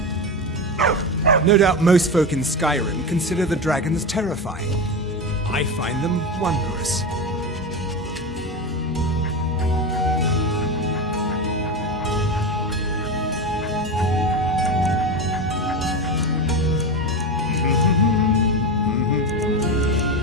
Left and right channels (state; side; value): normal; both; correlation 0.20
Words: No doubt most folk in Skyrim consider the dragons terrifying. I find them wondrous.